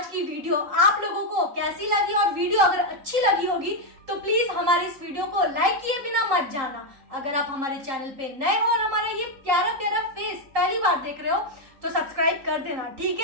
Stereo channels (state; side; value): late; left; 3.8 ms